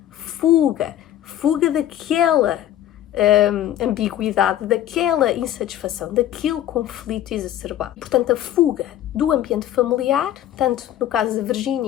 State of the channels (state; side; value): quieter; right; 12.1 dB